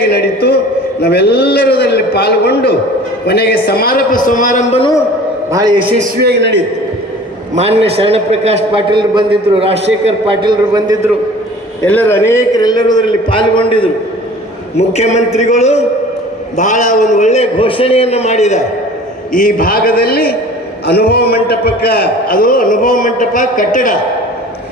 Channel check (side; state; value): both; normal; correlation 0.44